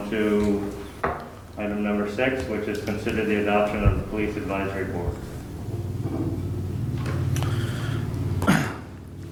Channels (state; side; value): identical; both; correlation 1.00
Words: to item number 6, which is consider the adoption of the Police Advisory Board.